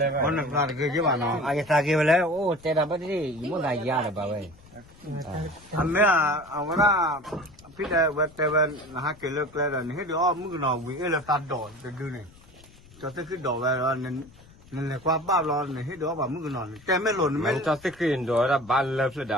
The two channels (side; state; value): left; noise; rumble, 24 dB below the sound